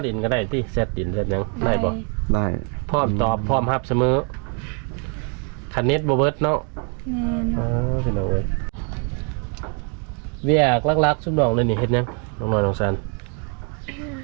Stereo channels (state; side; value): quieter; left; 38.7 dB